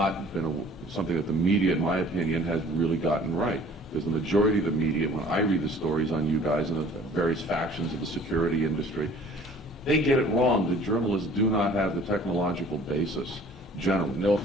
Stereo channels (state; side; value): normal; both; correlation 0.50